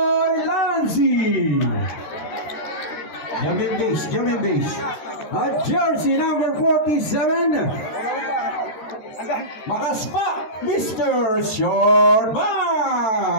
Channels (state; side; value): late; right; 13 ms